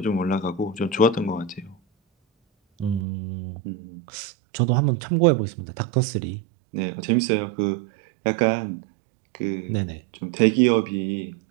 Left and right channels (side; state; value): left; drops out; at 3.1 s